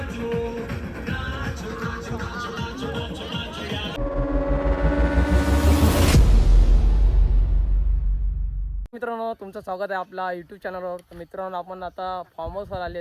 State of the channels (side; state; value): both; identical; correlation 1.00